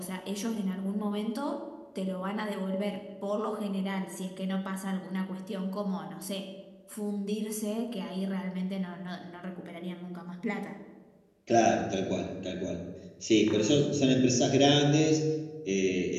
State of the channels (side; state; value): both; identical; correlation 1.00